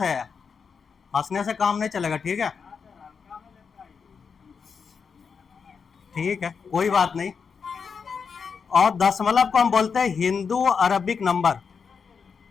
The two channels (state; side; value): quieter; right; 5.9 dB